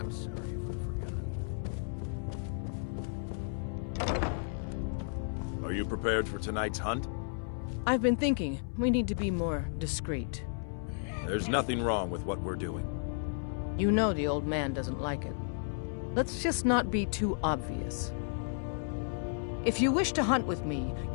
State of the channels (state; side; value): silent; right; 56 dB below the other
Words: sorry if I've forgotten. Are you prepared for tonight's hunt? I've been thinking we need to be more discreet. There's nothing wrong with what we're doing. You know the old man doesn't like it. Let's just not be too obvious. If you wish to hunt with me,